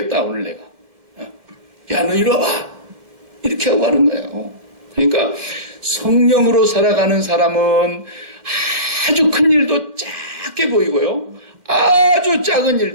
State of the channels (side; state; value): left; late; 2.1 ms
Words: 오늘 내가. 야 너 이리 와봐. 이렇게 하고 하는 거예요. 그러니까 성령으로 살아가는 사람은 아주 큰 일도 작게 보이고요. 아주 작은